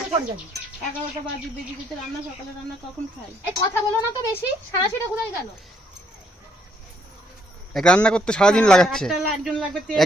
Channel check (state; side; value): normal; both; correlation 0.70